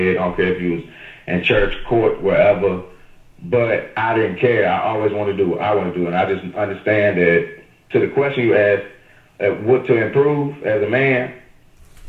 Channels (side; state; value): both; identical; correlation 1.00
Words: I don't care if you was in church, court, wherever. But I didn't care. I always wanted to do what I want to do, and I just understand that. To the question you asked, what to improve as a man,